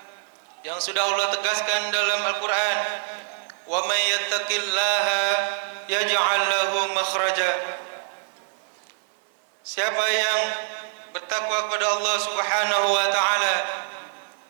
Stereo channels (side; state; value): left; silent; 59 dB below the other